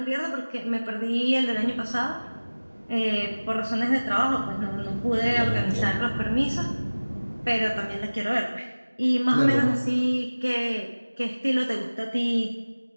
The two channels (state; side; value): inverted; both; correlation -1.00